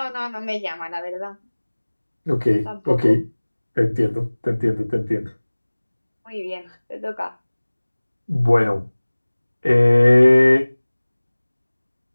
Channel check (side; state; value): both; inverted; correlation -1.00